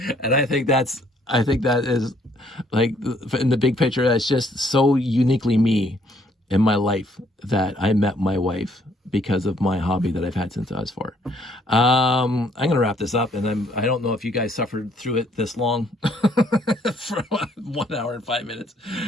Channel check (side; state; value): both; normal; correlation 0.66